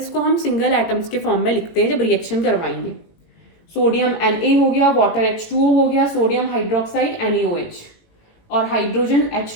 को हम सिंगल एटम्स के फॉर्म में लिखते हैं जब रिएक्शन करवाएंगे। सोडियम Na हो गया, वाटर H2O हो गया, सोडियम हाइड्रोक्साइड NaOH और हाइड्रोजन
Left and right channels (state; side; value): late; right; 18 ms